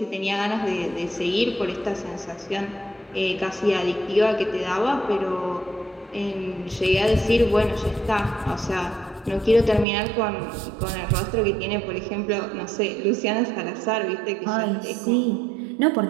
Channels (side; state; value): left; drops out; at 9.9 s